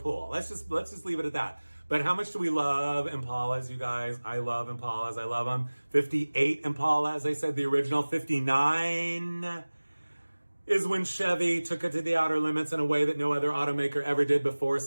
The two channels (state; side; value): inverted; both; correlation -1.00